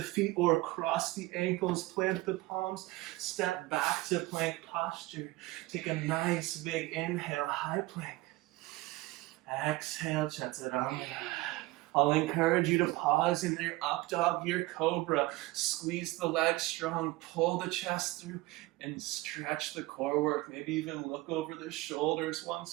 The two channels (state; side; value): quieter; left; 20.0 dB